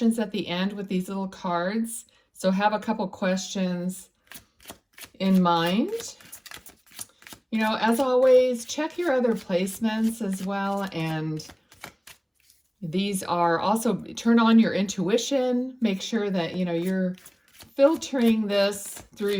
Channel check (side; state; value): both; identical; correlation 1.00